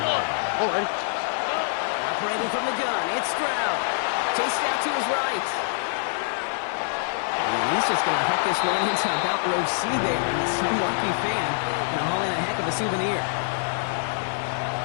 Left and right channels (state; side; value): silent; right; digital silence